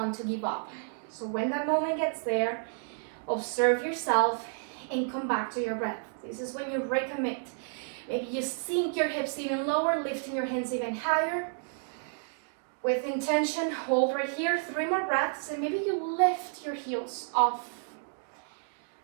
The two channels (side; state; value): left; silent; 57 dB below the other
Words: to give up. So when that moment gets there, observe yourself and come back to your breath. This is when you recommit. Maybe you sink your hips even lower, lifting your hands even higher. With intention, hold right here, 3 more breaths, and maybe you lift your heels off